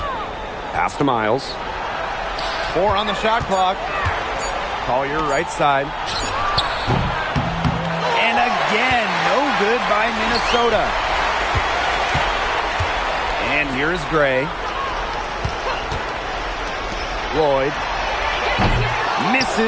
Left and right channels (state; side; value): identical; both; correlation 1.00